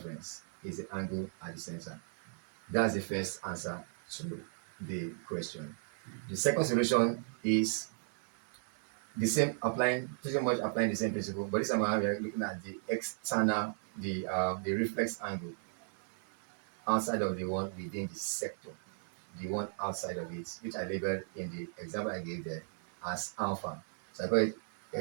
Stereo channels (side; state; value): left; silent; 54 dB below the other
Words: is the angle at the center. That's the first answer to the question. The second solution is the same, pretty much applying the same principle, but this time around we are looking at the external, the reflex angle outside of the one within the sector, the one outside of it, which I labeled in the example I gave there as alpha. So I call it